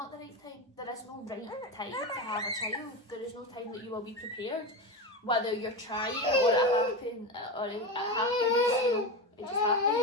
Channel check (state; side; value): normal; both; correlation 0.20